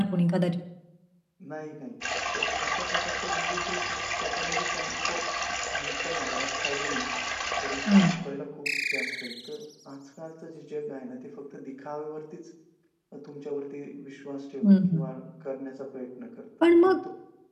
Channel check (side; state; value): both; identical; correlation 1.00